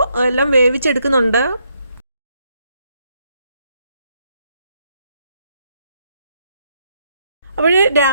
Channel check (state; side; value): inverted; both; correlation -0.75